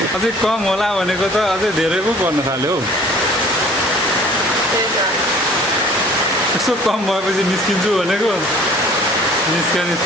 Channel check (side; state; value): both; normal; correlation 0.50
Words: अझै कम होला भनेको त अझै धेरै पो पर्न थाल्यो हौ। यसो कम भएपछि निस्किन्छु भनेको